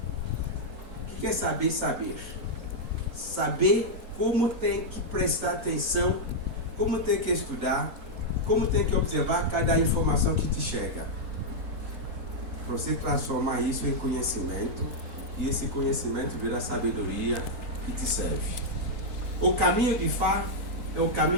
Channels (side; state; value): left; late; 3.9 ms